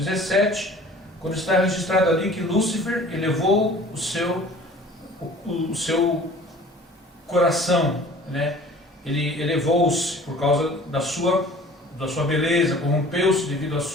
quando está registrado ali que Lúcifer elevou o seu coração, ele elevou-se por causa da sua beleza, corrompeu-se devido à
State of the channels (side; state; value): both; normal; correlation 0.47